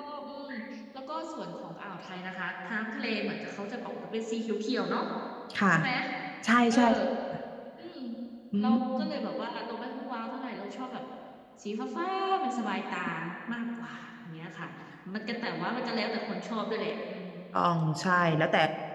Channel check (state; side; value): identical; both; correlation 1.00